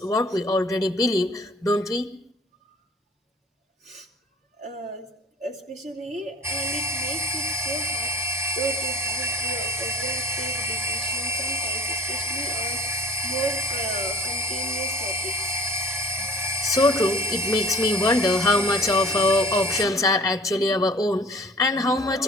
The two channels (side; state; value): both; normal; correlation 0.49